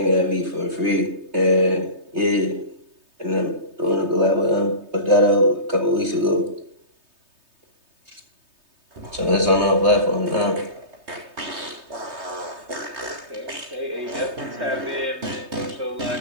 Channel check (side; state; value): left; late; 3.2 ms